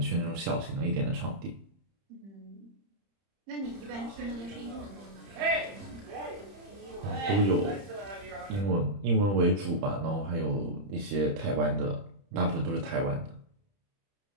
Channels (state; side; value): late; left; 30 ms